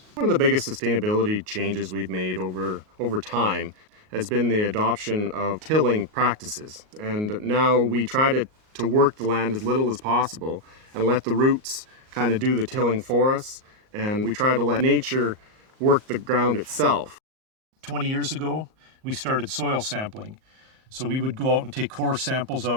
One of the biggest sustainability changes we've made over time has been the adoption of tilling practices. And now we try to work the land as little as possible and let the roots kind of do the tilling for us. And we try to let nature work the ground itself. 20 years ago, we started soil sampling. So we would go out and take core samples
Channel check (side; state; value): left; late; 38 ms